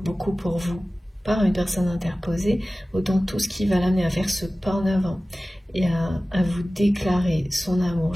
pour vous par une personne interposée, autant tout ce qui va l'amener à faire ce pas en avant et à vous déclarer son amour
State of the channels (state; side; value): normal; both; correlation 0.97